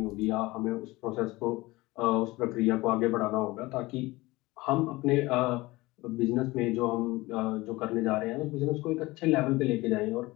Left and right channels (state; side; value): quieter; right; 20.7 dB